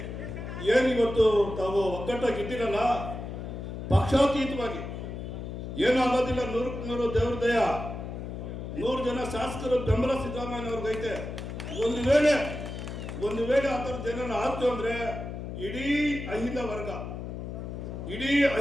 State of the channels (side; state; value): left; noise; hum, 7 dB below the sound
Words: ಏನಿವತ್ತು ತಾವು ಒಗ್ಗಟ್ಟಾಗಿದ್ದೀರಲ್ಲ, ಪಕ್ಷಾತೀತವಾಗಿ ಏನೂ ಆಗೋದಿಲ್ಲ. 100ಕ್ಕೆ 100 ದೇವ್ರ ದಯ. 100 ಜನ ಶಾಸಕರು ಬೆಂಬಲ ಸಿದ್ದರಾಮಯ್ಯನವ್ರಿಗೈತೆ. ಒಂದು ವೇಳೆ ಆ ಥರದ್ದು ಏನಾರು ಆಯ್ತು ಅಂದರೆ ಇಡೀ ಅಹಿಂದ